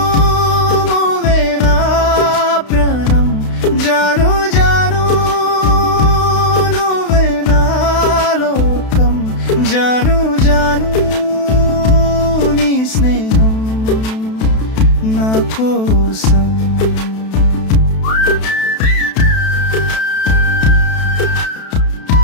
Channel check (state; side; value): late; right; 32 ms